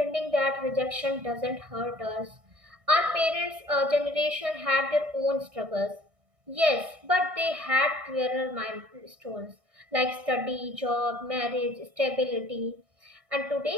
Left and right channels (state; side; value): late; left; 1.6 ms